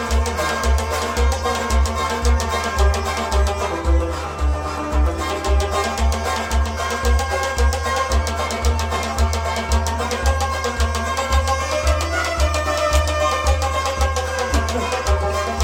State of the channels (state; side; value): identical; both; correlation 1.00